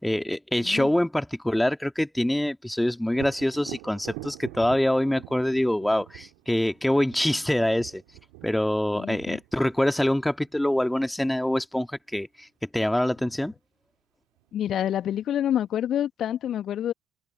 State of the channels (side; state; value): both; normal; correlation 0.95